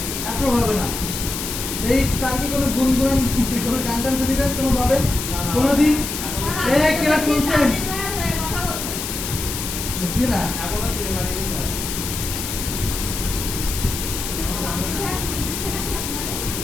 অ্যাপ্রুভ হবে না। এই তার কি কোনো গুনগুন, কোনো গান টান শুনেছেন কোনো ভাবে কোনোদিন? কেউ শুনছেন? বুঝছি না।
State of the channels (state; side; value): noise; left; hiss, 5 dB below the sound